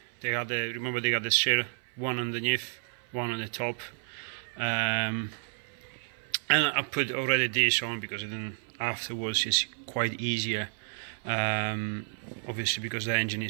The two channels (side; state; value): left; silent; 56 dB below the other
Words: they got the, remember they got the seal, one underneath, one on the top. And I put already this on because then afterwards it's quite easier. Obviously because the engine